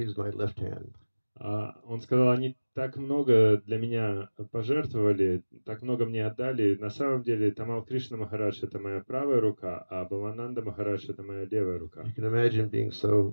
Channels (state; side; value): inverted; both; correlation -1.00